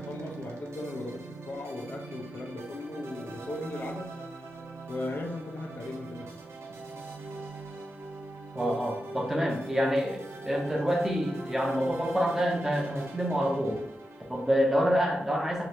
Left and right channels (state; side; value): normal; both; correlation 0.89